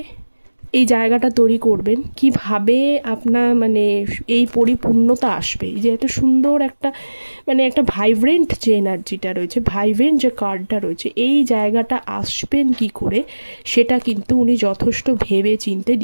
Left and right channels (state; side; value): inverted; both; correlation -1.00